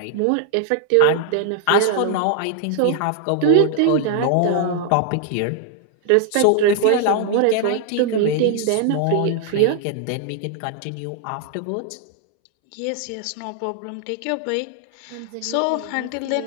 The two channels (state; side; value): different; both; correlation 0.00